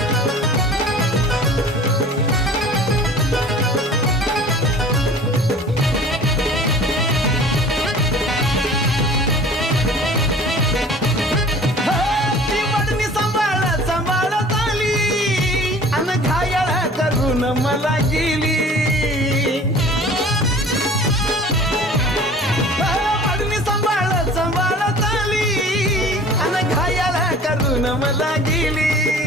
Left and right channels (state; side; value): normal; both; correlation 0.45